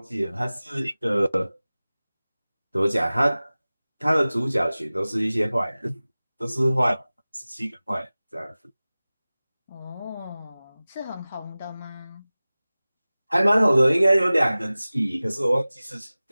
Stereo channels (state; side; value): inverted; both; correlation -0.98